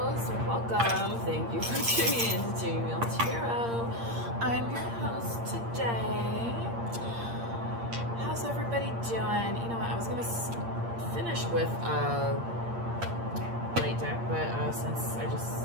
welcome. Thank you for tuning in to Tuning Wheel Tarot. I'm your host today. How's everybody doing? You know what, I was gonna finish with light deck, but since I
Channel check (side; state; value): left; late; 8.7 ms